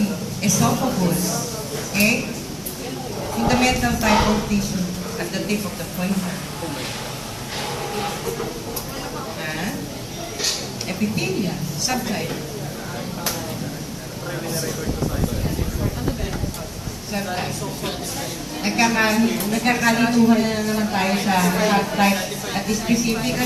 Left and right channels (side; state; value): both; identical; correlation 1.00